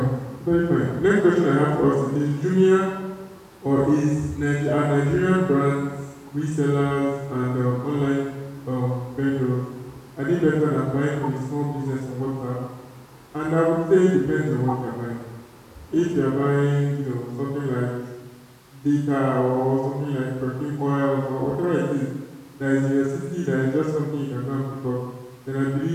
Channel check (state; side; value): identical; both; correlation 1.00